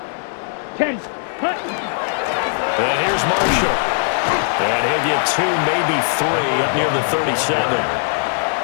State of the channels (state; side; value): silent; right; digital silence